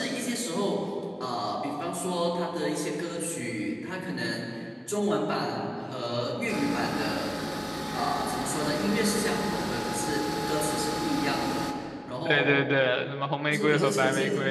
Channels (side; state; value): both; identical; correlation 1.00